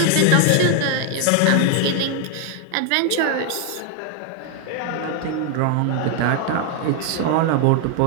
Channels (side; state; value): both; different; correlation 0.00